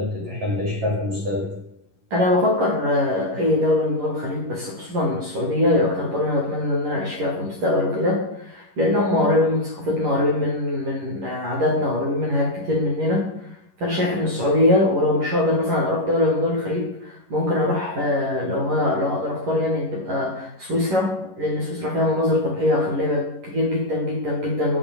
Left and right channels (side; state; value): left; late; 11 ms